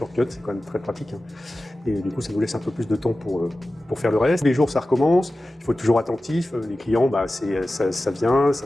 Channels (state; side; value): normal; both; correlation 0.95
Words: c'est quand même très pratique. Et du coup, ça nous laisse un peu plus de temps pour faire le reste. Les jours, ça recommence, il faut être toujours attentif. Les clients, ça vient,